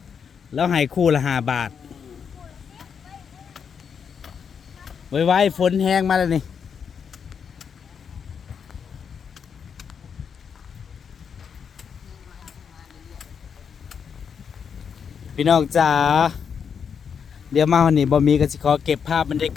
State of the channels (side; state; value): right; quieter; 6.9 dB